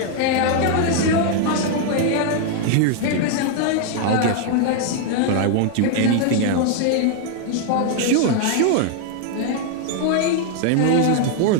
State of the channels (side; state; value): both; different; correlation 0.00